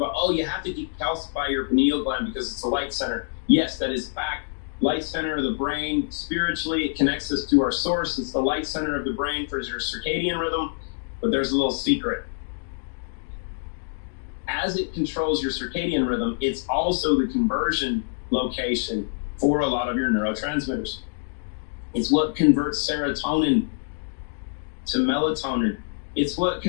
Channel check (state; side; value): silent; right; digital silence